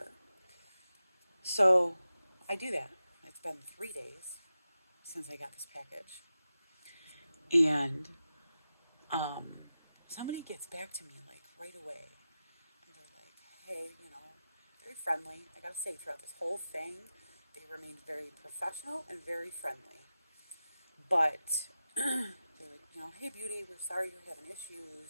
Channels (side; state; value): both; inverted; correlation -0.93